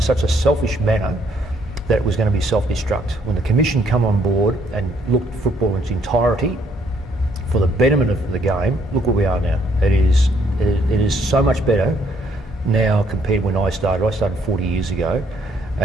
such a selfish manner that it was going to be self-destruct. When the Commission come on board and looked at football in its entirety for the betterment of the game, look where we are now. It is so much better now compared when I started. I started 40 years ago,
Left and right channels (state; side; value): normal; both; correlation 0.68